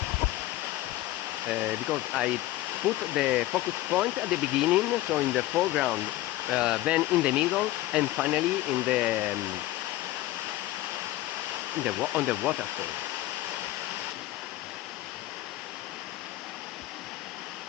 because I put the focus point at the beginning, so in the foreground, then in the middle, and finally in the on the waterfall.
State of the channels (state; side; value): quieter; right; 16.1 dB